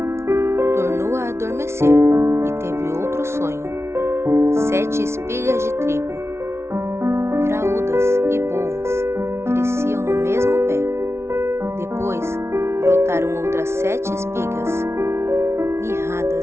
Tornou a adormecer e teve outro sonho. 7 espigas de trigo, graúdas e boas, cresciam no mesmo pé. Depois, brotaram outras 7 espigas,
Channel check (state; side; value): late; left; 0.13 ms